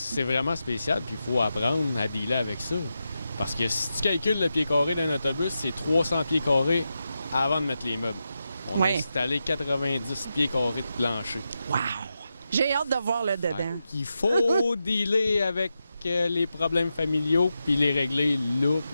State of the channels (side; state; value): both; inverted; correlation -0.89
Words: vraiment spécial, puis il faut apprendre à dealer avec ça. Parce que si tu calcules le pied carré d'un autobus, c'est 300 pieds carrés avant de mettre les meubles. On a installé 90 pieds carrés de plancher. Wow! J'ai hâte de voir le dedans. Il faut dealer avec les problèmes familiaux, puis les régler là,